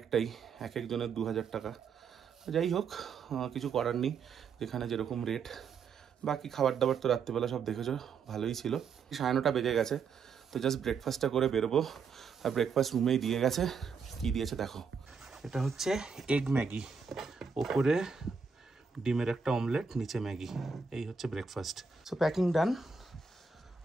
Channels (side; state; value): left; quieter; 5.5 dB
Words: এক একজনের 2000 টাকা। যাই হোক, কিছু করার নেই, যেখানে যেরকম রেট। বাকি খাবার দাবার তো রাত্রিবেলা সব দেখেছো, ভালোই ছিল। 9:30 বেজে গেছে, তো জাস্ট ব্রেকফাস্টটা করে বেরোবো। আর ব্রেকফাস্ট রুমেই দিয়ে গেছে। কি দিয়েছে দেখো, এটা হচ্ছে এগ ম্যাগি, ওপরে ডিমের একটা অমলেট, নিচে ম্যাগি। এই হচ্ছে ব্রেকফাস্ট। সো প্যাকিং ডান,